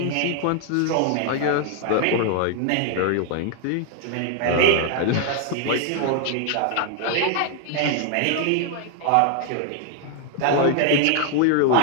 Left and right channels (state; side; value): different; both; correlation 0.00